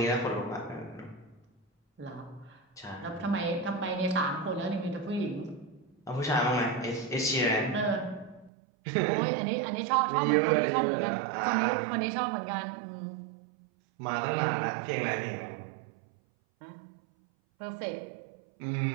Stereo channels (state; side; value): drops out; left; at 8.5 s